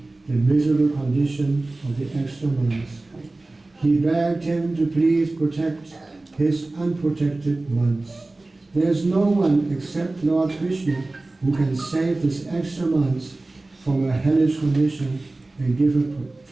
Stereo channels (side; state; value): left; quieter; 3.0 dB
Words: the miserable condition of the extra months. He begged him to please protect his unprotected months. There is no one except Lord Krishna who can save this extra months from a hellish condition and give her